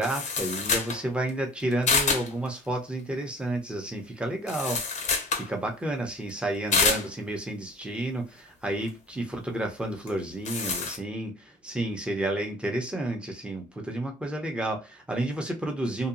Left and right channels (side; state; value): both; normal; correlation 0.47